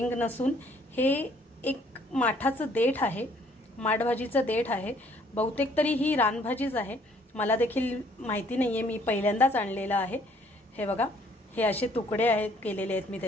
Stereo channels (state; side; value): normal; both; correlation 0.62